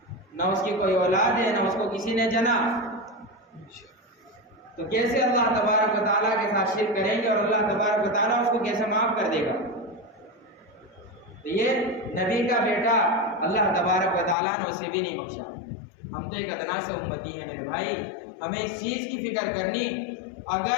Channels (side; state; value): right; drops out; at 14.4 s